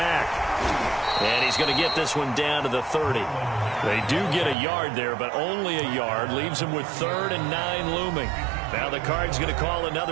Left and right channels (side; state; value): left; drops out; at 4.5 s